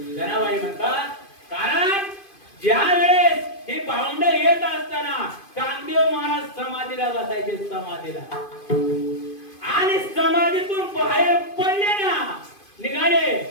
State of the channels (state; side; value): late; right; 2.5 ms